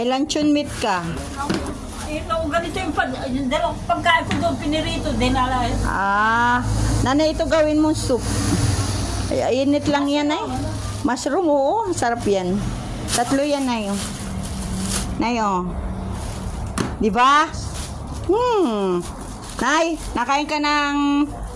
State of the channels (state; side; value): identical; both; correlation 1.00